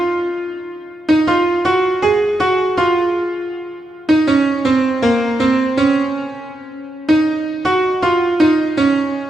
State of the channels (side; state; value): both; normal; correlation 0.85